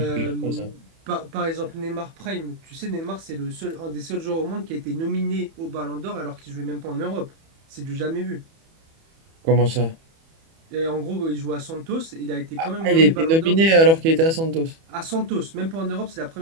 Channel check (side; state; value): left; late; 31 ms